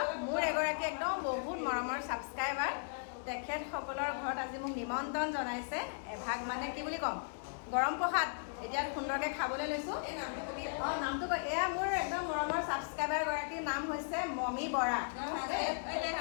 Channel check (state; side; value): silent; right; digital silence